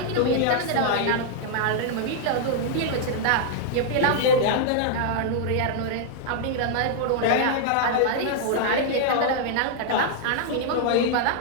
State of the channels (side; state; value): both; different; correlation -0.01